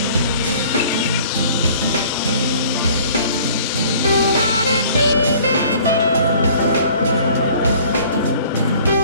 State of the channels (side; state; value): both; inverted; correlation -0.53